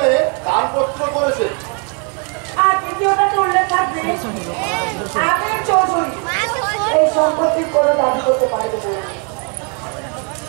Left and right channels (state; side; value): quieter; left; 38.0 dB